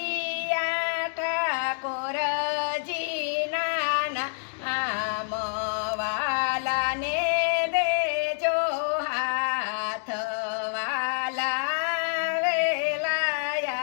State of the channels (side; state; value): right; silent; digital silence